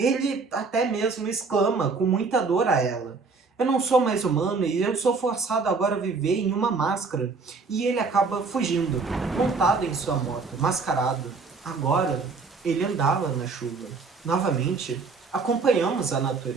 até mesmo exclama com muita dor a ela: eu não sou mais humano e eu sou forçado agora a viver em uma máscara. E ele acaba fugindo, montado em sua moto, mascarado. Agora, ele andava na chuva. Novamente, acompanhamos a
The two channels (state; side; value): quieter; left; 4.4 dB